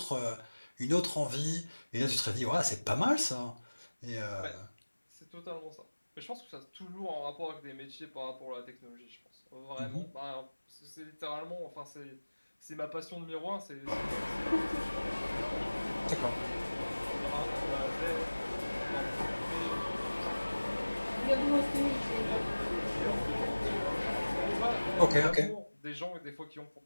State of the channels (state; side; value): inverted; both; correlation -1.00